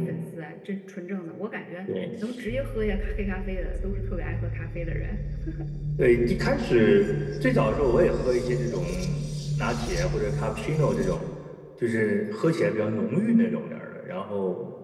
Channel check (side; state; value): both; identical; correlation 1.00